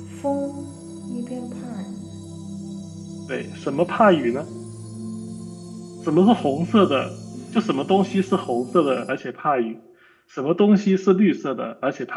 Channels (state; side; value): identical; both; correlation 1.00